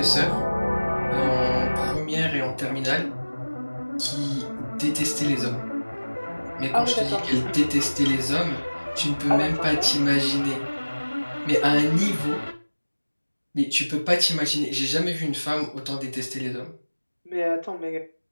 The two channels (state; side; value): inverted; both; correlation -1.00